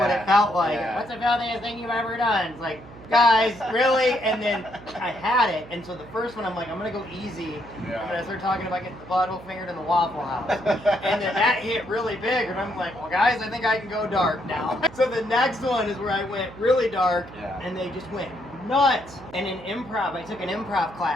what it felt like. yeah. What's the filthiest thing you've ever done? It's like, guys, really? And then I had it, and so the first one, I'm like, I'm gonna go easy. Yeah. I'm gonna start talking about getting the butthole fingered in the Waffle House. And then that hit really big, and I'm like, well, guys, I think I can go dark now. So the next one is where I went really dark, Yeah. and they just went nuts. And in improv, I took an improv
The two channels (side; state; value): right; noise; hum, 19 dB below the sound